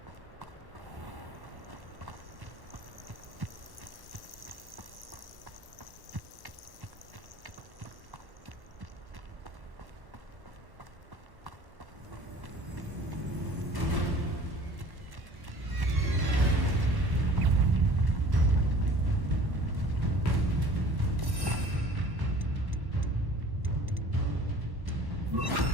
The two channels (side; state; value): left; late; 1.1 ms